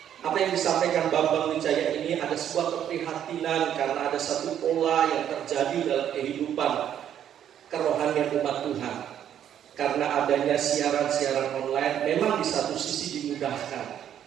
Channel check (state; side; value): quieter; left; 10.0 dB